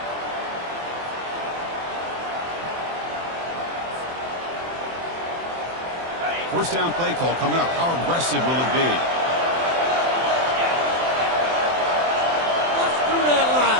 First down play call coming up. How aggressive will it be?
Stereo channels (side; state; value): left; late; 24 ms